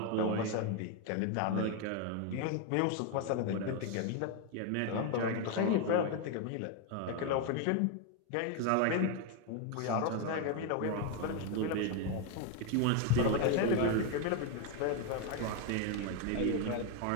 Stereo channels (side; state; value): both; different; correlation 0.01